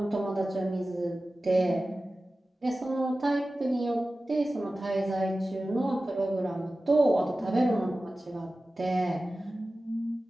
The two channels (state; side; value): normal; both; correlation 0.96